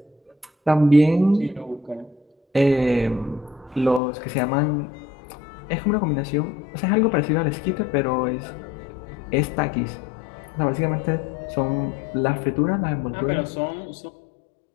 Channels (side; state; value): right; drops out; at 4.0 s